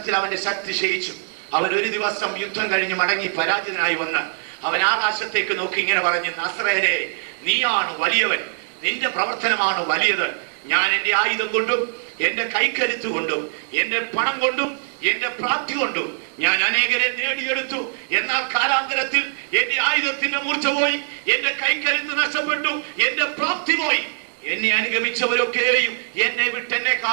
അവന്റെ ശക്തി ക്ഷയിച്ചു. അവൻ ഒരു ദിവസം യുദ്ധം കഴിഞ്ഞ് മടങ്ങി പരാജിതനായി വന്ന് അവൻ ആകാശത്തേക്ക് നോക്കി ഇങ്ങനെ പറഞ്ഞു, നസ്രയനെ, നീയാണ് വലിയവൻ, നിന്റെ പ്രവർത്തനമാണ് വലിയത്. ഞാൻ എന്റെ ആയുധം കൊണ്ടും എന്റെ കൈക്കരുത്ത് കൊണ്ടും എന്റെ പണം കൊണ്ടും എന്റെ പ്രാപ്തി കൊണ്ടും ഞാൻ അനേകരെ നേടിയെടുത്തു. എന്നാൽ കാലാന്തരത്തിൽ എന്റെ ആയുധത്തിന്റെ മൂർച്ച പോയി, എന്റെ കൈക്കരുത്ത് നഷ്ടപ്പെട്ടു, എന്റെ പ്രാപ്തി പോയി. എന്നെ അനുഗമിച്ചവരൊക്കെയും എന്നെ വിട്ടെന്നെ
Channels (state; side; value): silent; left; 64 dB below the other